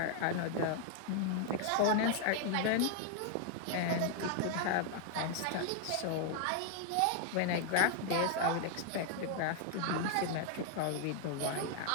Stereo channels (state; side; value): different; both; correlation 0.00